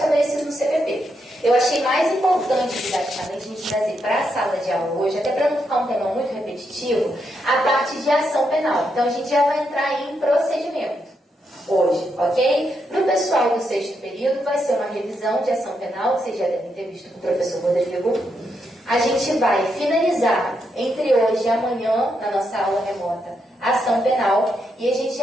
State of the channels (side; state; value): both; normal; correlation 0.81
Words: no CPP. Eu achei mais importante, didaticamente, a gente trazer para a sala de aula hoje, até para não ficar um tema muito repetitivo, a parte de ação penal. Então, a gente já vai entrar em procedimento hoje, ok? Para o pessoal do 6º período, vai ser uma revisão de ação penal, que vocês já devem ter visto com o professor Rodrigo. A gente vai finalizar, entre hoje e amanhã, na nossa aula remota, a ação penal, e a gente